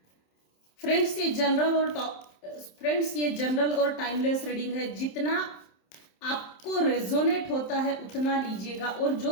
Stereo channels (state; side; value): late; right; 27 ms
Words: फ्रेंड्स ये जनरल और टाइमलेस रीडिंग है। जितना आपको रेजोनेट होता है उतना लीजिएगा, और